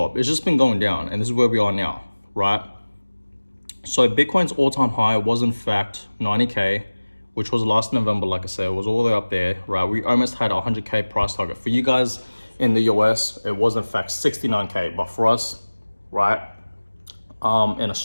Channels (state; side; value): inverted; both; correlation -1.00